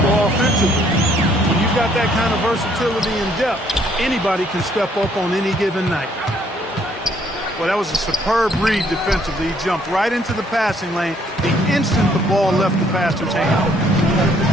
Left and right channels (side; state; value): both; normal; correlation 0.65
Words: offensively. When you've got that kind of versatility and depth, anybody can step up on any given night. Well, that was a superb read defensively. He jumped right into the passing lane the instant the ball left the passer's hand.